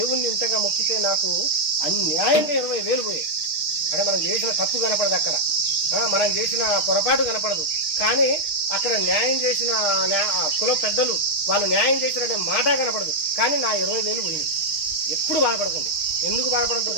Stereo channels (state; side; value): late; right; 6.3 ms